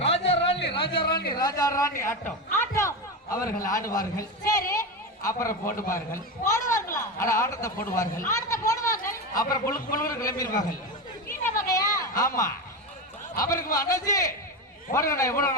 ராஜா ராணி ராஜா ராணி ராஜா ராணி ஆட்டம் அவர்கள் ஆடுவார்கள். அப்புறம் போடுவார்கள். ஆட்டத்தை போடுவார்கள். அப்புறம் புழுக்கு புழுக்கு கிளம்பிடுவார்கள். ஆமா, அவருக்கு அண்ணாச்சி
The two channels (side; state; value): both; normal; correlation 0.17